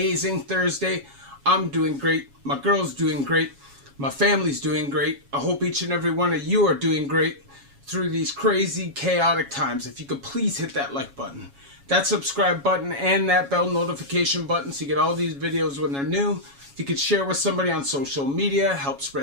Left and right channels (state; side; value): late; left; 7.2 ms